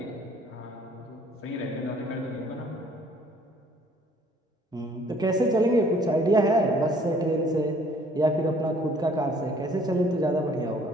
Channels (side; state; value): both; normal; correlation 0.58